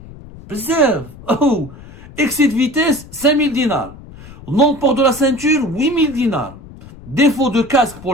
Bzaf. Oh. Excès de vitesse, 5 000 dinars. Non-port de la ceinture, 8 000 dinars. Défaut de casque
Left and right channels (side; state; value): left; noise; rumble, 18 dB below the sound